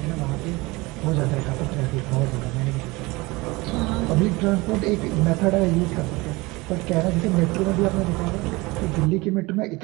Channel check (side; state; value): left; quieter; 22.8 dB